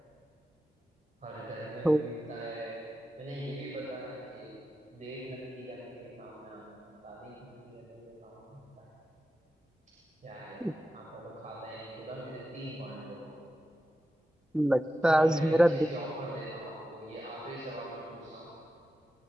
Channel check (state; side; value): normal; both; correlation 0.90